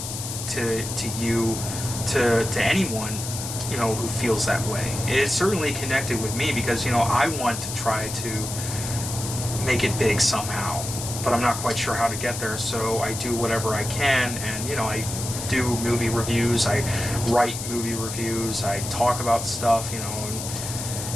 to you, to anyone, who feels that way. It certainly connected with me because, I want to try to make it big somehow, but I'm not quite sure how to get there, so I do whatever I can, and, I do movie reviews, I write movie reviews, I talk about stuff, and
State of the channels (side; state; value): left; noise; hiss, 6 dB below the sound